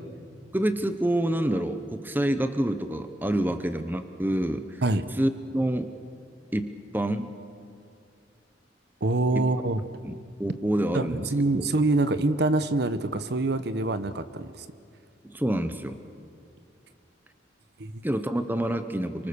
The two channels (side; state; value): both; normal; correlation 0.73